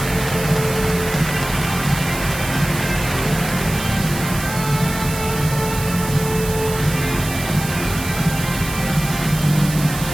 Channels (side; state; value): right; noise; hiss, 9 dB below the sound